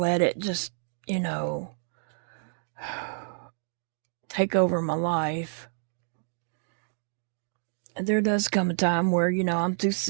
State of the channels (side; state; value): left; silent; digital silence